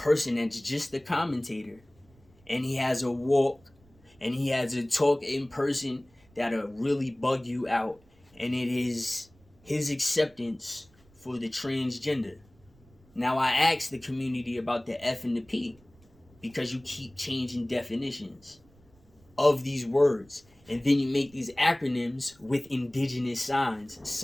that's just a commentator. and he has a walk, and he has a talk in person that'll really bug you out, and it is his acceptance for the transgender. Now, I asked the community about the F and the P because you keep changing definitions of these words, and then you make these acronyms with indigenous signs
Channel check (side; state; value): right; noise; rumble, 29 dB below the sound